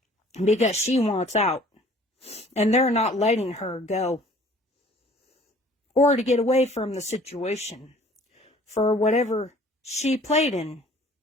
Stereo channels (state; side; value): normal; both; correlation 0.53